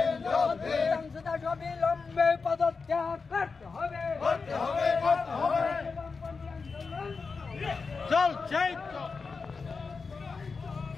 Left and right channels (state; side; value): quieter; right; 4.7 dB